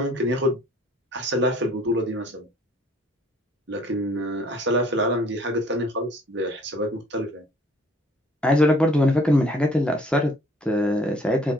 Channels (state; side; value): normal; both; correlation 0.57